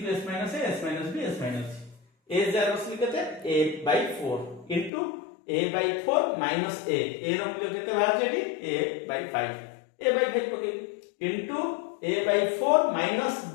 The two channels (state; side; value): drops out; right; at 4.9 s